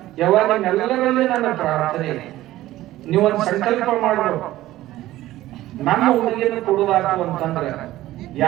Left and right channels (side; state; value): left; quieter; 15.5 dB